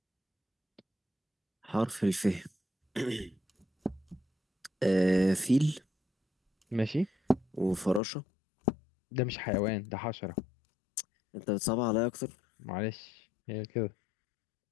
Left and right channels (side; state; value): right; drops out; at 8.0 s